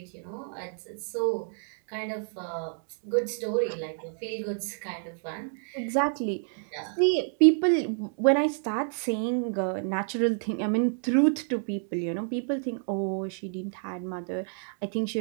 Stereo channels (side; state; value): left; silent; 59 dB below the other